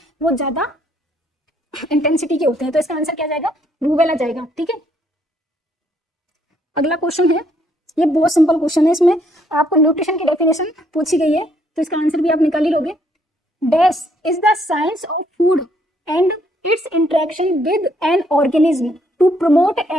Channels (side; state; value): both; normal; correlation 0.69